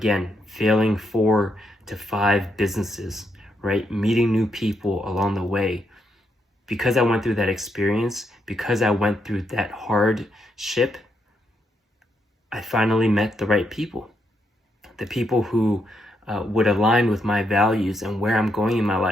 failing 4 to 5 businesses, right? Meeting new people along the way. Because I went through that experience, because I went through that hardship, I finally met the right people. The people who would align with my values and where I'm going in my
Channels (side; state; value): both; normal; correlation 0.79